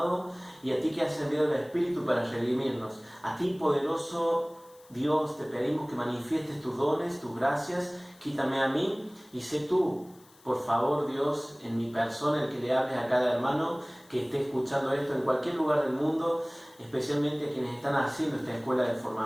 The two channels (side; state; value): left; noise; hiss, 27 dB below the sound